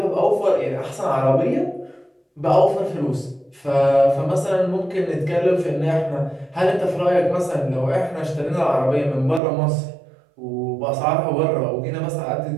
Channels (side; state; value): left; drops out; at 9.4 s